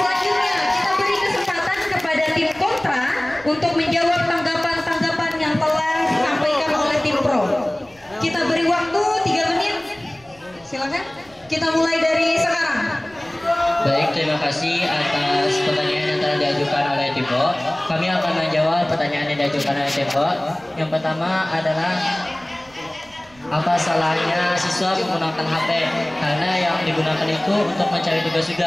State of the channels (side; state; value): right; noise; rumble, 29 dB below the sound